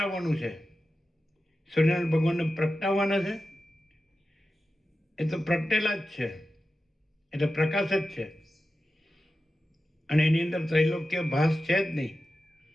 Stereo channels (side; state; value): both; normal; correlation 0.93